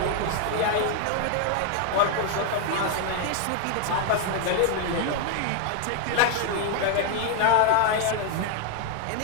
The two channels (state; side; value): different; both; correlation 0.00